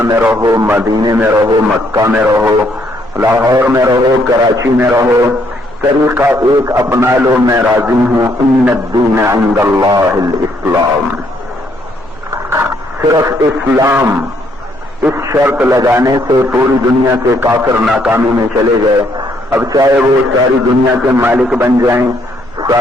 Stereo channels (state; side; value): normal; both; correlation 0.70